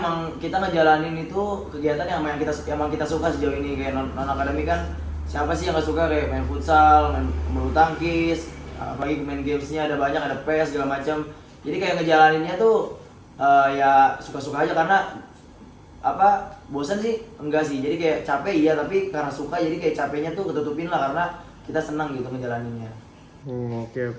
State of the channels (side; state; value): both; identical; correlation 1.00